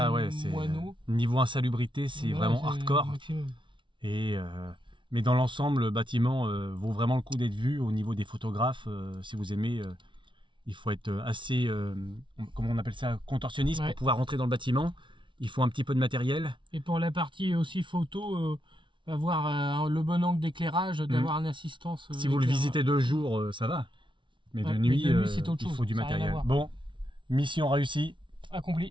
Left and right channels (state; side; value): late; left; 0.24 ms